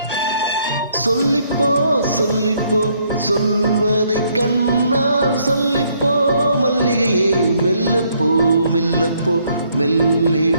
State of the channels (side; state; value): both; inverted; correlation -0.69